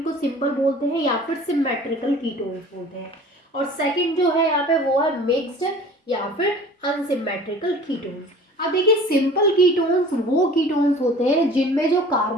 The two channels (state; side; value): normal; both; correlation 0.45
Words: सिंपल बोलते हैं या फिर सिमेट्रिकल कीटोन्स बोलते हैं। और सेकंड जो है यहाँ पे वो है मिक्स्ड या फिर अनसिमेट्रिकल कीटोन्स। अब देखिए, सिंपल कीटोन्स वो कीटोन्स होते हैं जिनमें जो